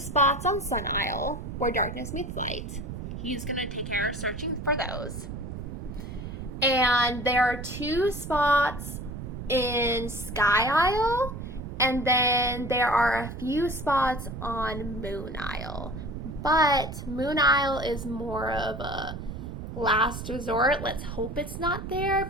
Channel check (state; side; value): noise; right; rumble, 8 dB below the sound